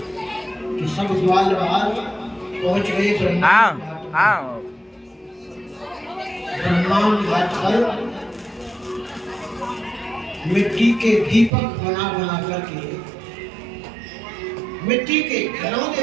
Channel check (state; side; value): drops out; left; at 11.5 s